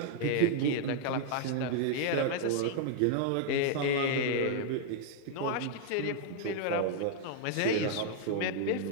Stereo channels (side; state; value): both; different; correlation 0.00